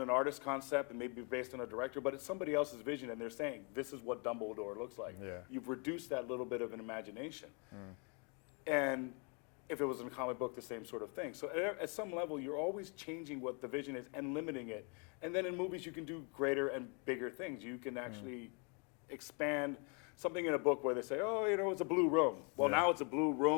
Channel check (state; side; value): quieter; right; 35.1 dB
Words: an artist concept, it may be based on a director, but it's somebody else's vision, and they're saying, this is what Dumbledore looks like. Yeah. You've reduced that little bit of an imagination. And if it was in a comic book, the same sort of thing. So at some level, you're always changing what the vision is and limiting it. And then in movies, you can do greater and bigger things. You can actually expand something in a book where they say, oh, it's a blue room. Well, now it's a blue